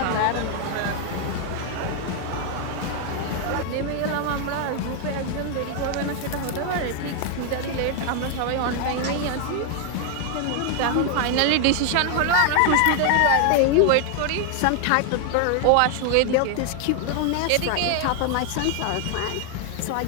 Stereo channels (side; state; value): both; different; correlation 0.00